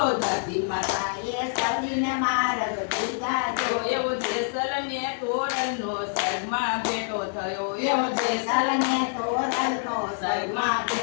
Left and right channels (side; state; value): right; silent; digital silence